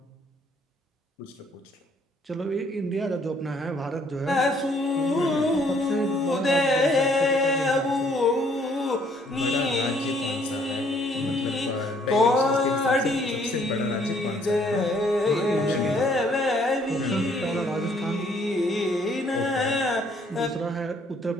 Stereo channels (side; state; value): both; normal; correlation 0.64